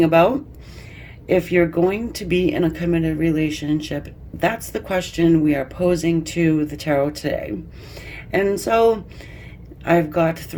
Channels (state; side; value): identical; both; correlation 1.00